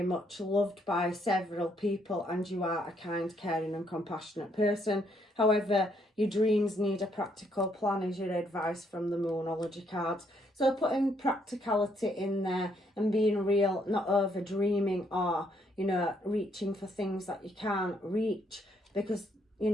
much loved by several people and you are a kind, caring and compassionate person. However, your dreams need a practical plan is your advice from the Moonology cards. So putting practicality in there and being real, not over dreaming or, you know, reaching for things that you can't reach, because you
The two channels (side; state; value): both; normal; correlation 0.71